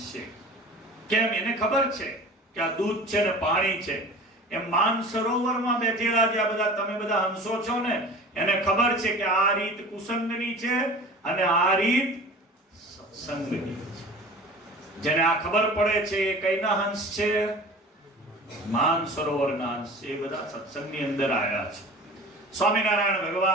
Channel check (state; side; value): normal; both; correlation 0.39